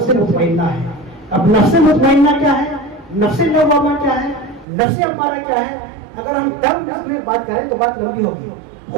مطمئنہ ہے. اب نفس مطمئنہ کیا ہے، نفس لوامہ کیا ہے، نفس امارہ کیا ہے؟ اگر ہم ٹرم میں بات کریں تو بات لمبی ہوگی.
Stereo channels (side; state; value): left; drops out; at 4.7 s